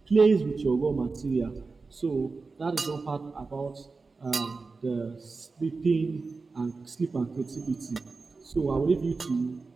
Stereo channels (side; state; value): left; quieter; 4.1 dB